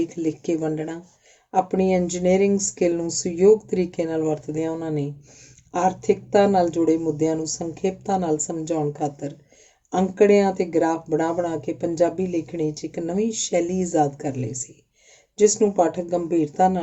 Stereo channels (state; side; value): identical; both; correlation 1.00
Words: ਲਿਖ ਕੇ ਵੰਡਣਾ। ਆਪਣੀ ਇੰਜੀਨੀਅਰਿੰਗ ਸਕਿੱਲ ਨੂੰ ਸੁਯੋਗ ਤਰੀਕੇ ਨਾਲ ਵਰਤਦਿਆਂ ਉਹਨਾਂ ਨੇ ਆਰਥਿਕਤਾ ਨਾਲ ਜੁੜੇ ਮੁੱਦਿਆਂ ਨੂੰ ਸੰਖੇਪਤਾ ਨਾਲ ਸਮਝਾਉਣ ਖਾਤਰ ਅੰਕੜਿਆਂ ਤੇ ਗ੍ਰਾਫ ਬਣਾ ਕੇ ਪੰਜਾਬੀ ਲੇਖਣੀ 'ਚ ਇੱਕ ਨਵੀਂ ਸ਼ੈਲੀ ਈਜਾਦ ਕਰ ਲਈ ਸੀ, ਜਿਸ ਨੂੰ ਪਾਠਕ ਗੰਭੀਰਤਾ